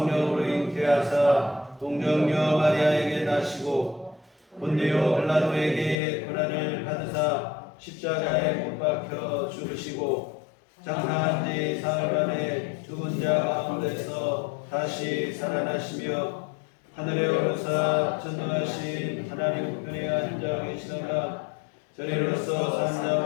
잉태하사 동정녀 마리아에게 나시고 본디오 빌라도에게 고난을 받으사 십자가에 못 박혀 죽으시고 장사한 지 사흘 만에 죽은 자 가운데서 다시 살아나시며 하늘에 오르사 전능하신 하나님 우편에 앉아 계시다가 저리로서 산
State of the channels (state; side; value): drops out; right; at 6.0 s